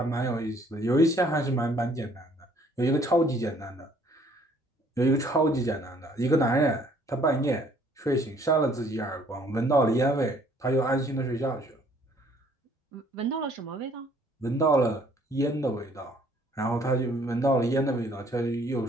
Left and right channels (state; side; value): normal; both; correlation 0.60